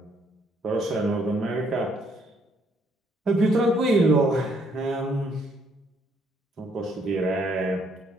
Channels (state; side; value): normal; both; correlation 0.69